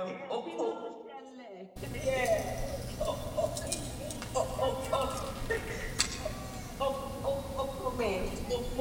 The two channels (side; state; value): both; identical; correlation 1.00